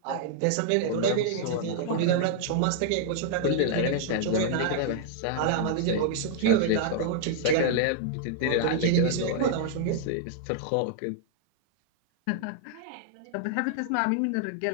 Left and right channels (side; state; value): both; different; correlation -0.01